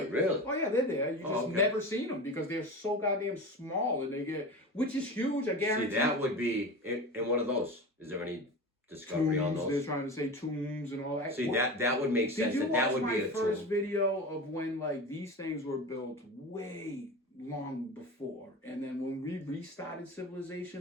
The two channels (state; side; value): normal; both; correlation 0.29